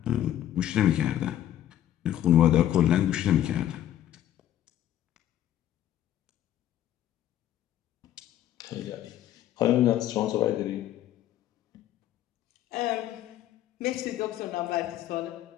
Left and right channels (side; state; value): right; quieter; 12.0 dB